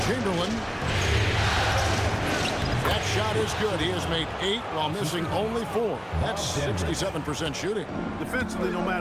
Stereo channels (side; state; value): both; identical; correlation 1.00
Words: Chamberlain. That shot is good. He has made 8 while missing only 4. That's 67% shooting. Defensively, no